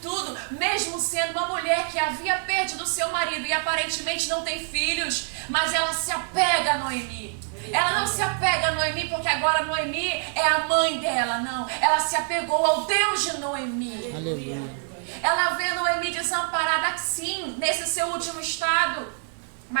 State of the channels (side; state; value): left; silent; 55 dB below the other